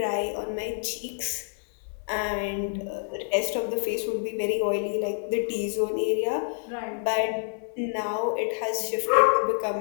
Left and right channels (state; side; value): silent; right; 60 dB below the other